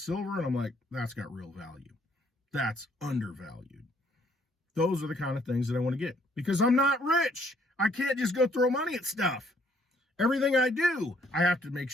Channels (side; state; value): both; normal; correlation 0.65